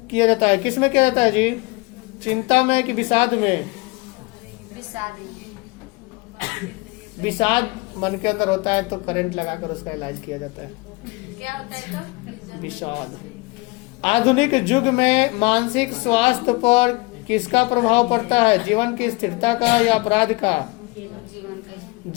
किया जाता है, किसमें किया जाता है जी? चिंता में कि विषाद में? विषाद मन के अंदर होता है तो करंट लगाकर उसका इलाज किया जाता है। क्या होता है तो? विषाद। आधुनिक युग में मानसिक स्वास्थ्य पर किसका प्रभाव पड़ता है? जीवन की स्थिरता का या अपराध का? जीवन का।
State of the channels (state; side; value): quieter; right; 25.2 dB